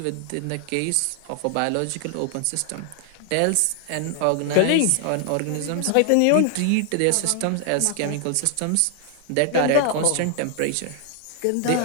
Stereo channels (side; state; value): both; different; correlation 0.00